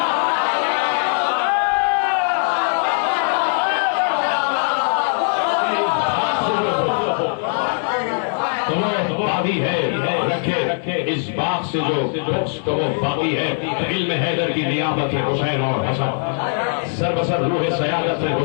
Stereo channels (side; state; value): right; silent; digital silence